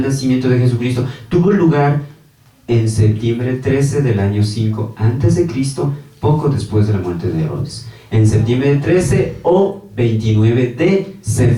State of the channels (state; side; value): identical; both; correlation 1.00